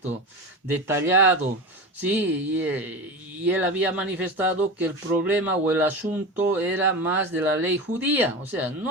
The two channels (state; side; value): normal; both; correlation 0.25